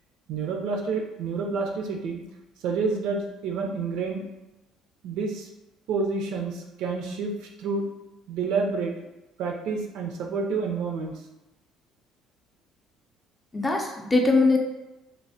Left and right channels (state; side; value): normal; both; correlation 0.60